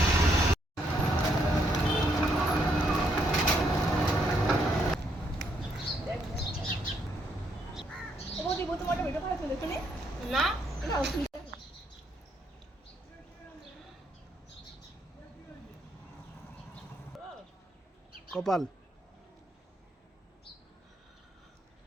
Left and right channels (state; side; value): normal; both; correlation 0.74